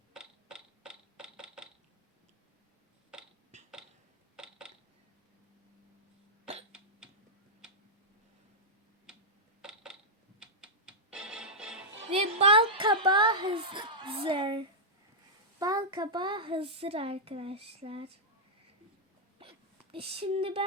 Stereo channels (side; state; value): both; normal; correlation -0.08